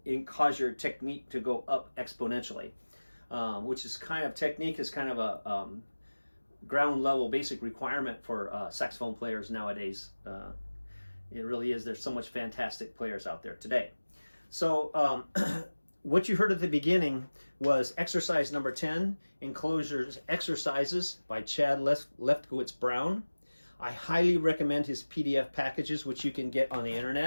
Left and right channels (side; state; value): both; inverted; correlation -1.00